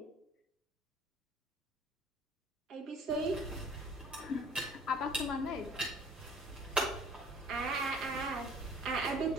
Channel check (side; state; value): both; normal; correlation 0.52